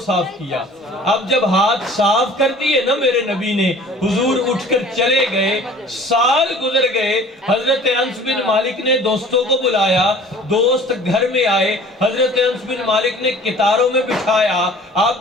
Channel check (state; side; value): normal; both; correlation 0.47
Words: کیا۔ اب جب ہاتھ صاف کر دیے نا میرے نبی نے، حضور اٹھ کر چلے گئے، سال گزر گئے۔ حضرت انس بن مالک نے دوستوں کو بلایا، دوست گھر میں آئے، حضرت انس بن مالک نے کتاروں میں بٹھایا۔